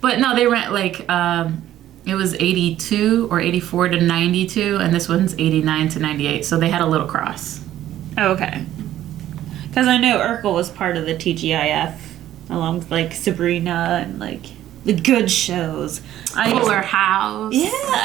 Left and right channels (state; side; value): quieter; left; 12.7 dB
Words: But no, they ran like it was 82 or 84 to 92, and this one's 89 to 98. So they had a little cross. Oh, okay. Because I know Urkel was part of the TGIF, along with like Sabrina and like the good shows. Fuller House. Yeah,